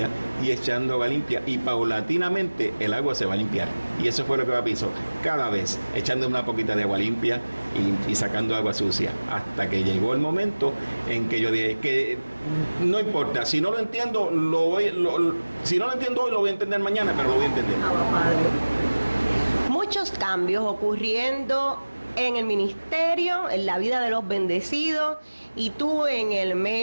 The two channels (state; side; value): inverted; both; correlation -1.00